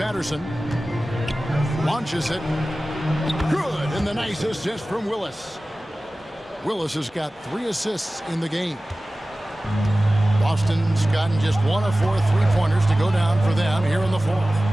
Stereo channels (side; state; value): both; normal; correlation 0.96